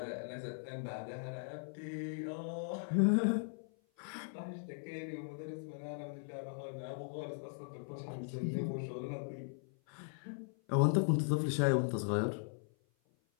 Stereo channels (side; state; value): right; silent; 52 dB below the other